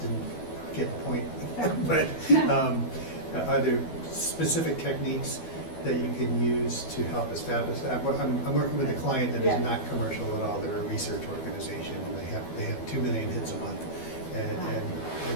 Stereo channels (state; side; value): late; right; 12 ms